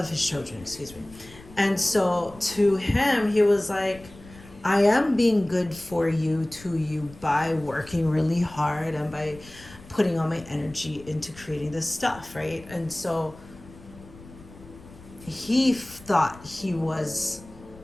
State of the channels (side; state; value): left; noise; rumble, 20 dB below the sound